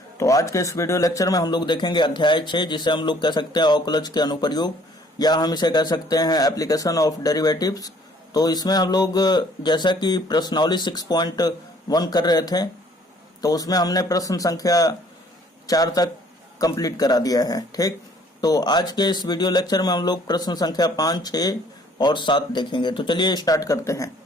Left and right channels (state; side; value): normal; both; correlation 0.59